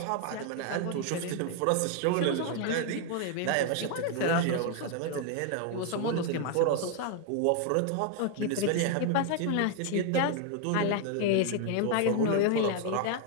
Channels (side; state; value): both; different; correlation 0.01